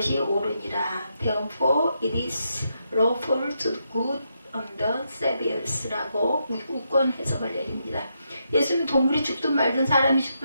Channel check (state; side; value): inverted; both; correlation -0.81